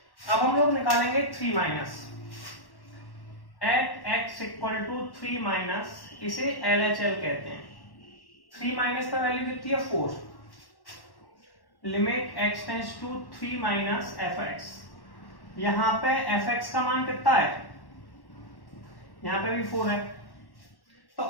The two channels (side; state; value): right; late; 1.1 ms